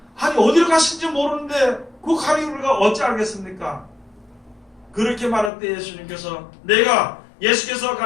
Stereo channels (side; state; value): right; drops out; at 5.5 s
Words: 아니 어디로 가신지 모르는데 그 가니 우리가 어찌 알겠습니까? 그렇게 말할 때 예수께서